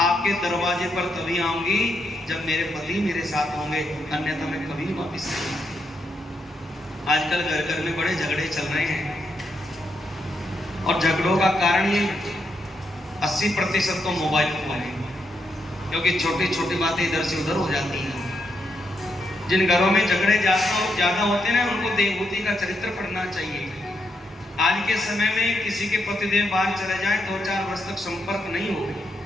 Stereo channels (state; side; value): normal; both; correlation 0.80